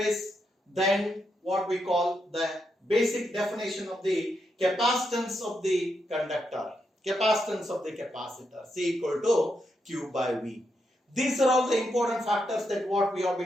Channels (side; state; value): both; normal; correlation 0.82